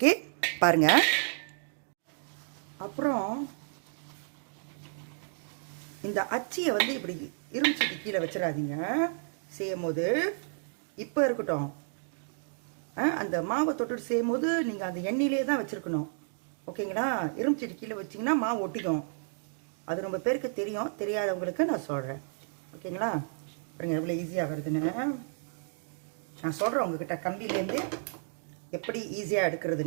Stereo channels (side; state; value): left; silent; digital silence